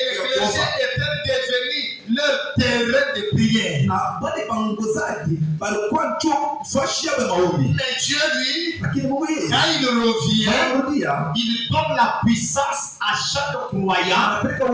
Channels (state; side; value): identical; both; correlation 1.00